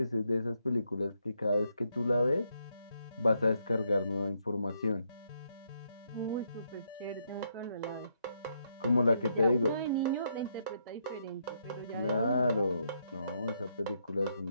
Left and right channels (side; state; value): both; inverted; correlation -0.77